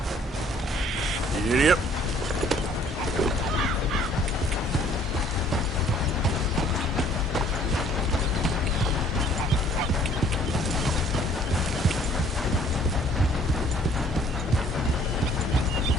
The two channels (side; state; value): both; normal; correlation 0.58